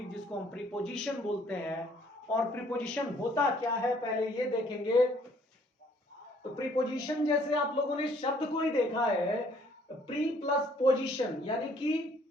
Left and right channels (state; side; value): normal; both; correlation 0.62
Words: जिसको हम प्रीपोजिशन बोलते हैं। और प्रीपोजिशन होता क्या है पहले ये देखेंगे। तो प्रीपोजिशन जैसे आप लोगों ने शब्द को ही देखा है, प्री प्लस पोजीशन, यानी कि